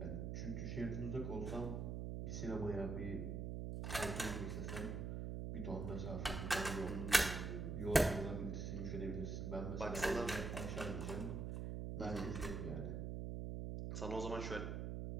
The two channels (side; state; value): right; noise; hum, 3 dB below the sound